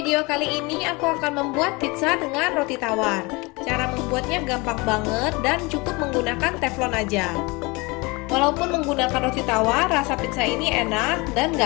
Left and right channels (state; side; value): quieter; right; 25.7 dB